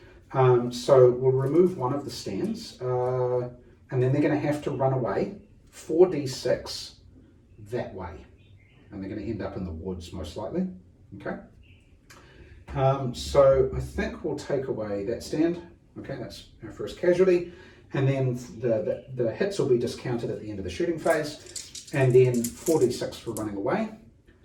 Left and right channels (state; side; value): identical; both; correlation 1.00